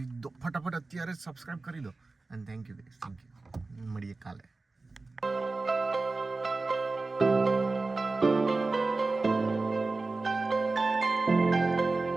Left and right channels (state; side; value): quieter; left; 3.5 dB